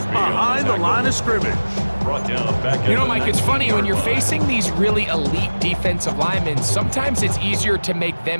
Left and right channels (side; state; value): both; inverted; correlation -1.00